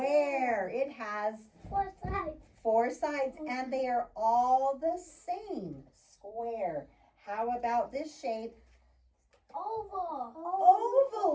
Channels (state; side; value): identical; both; correlation 1.00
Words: It has 4 sides. 4 sides, and they are all the same. Square. How about this shape? Oval.